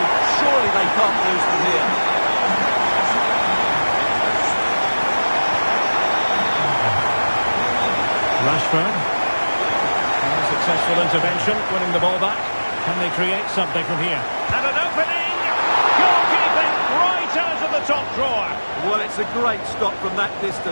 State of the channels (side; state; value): both; inverted; correlation -1.00